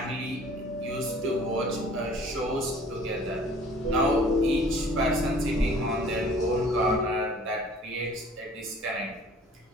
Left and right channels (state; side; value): normal; both; correlation 0.51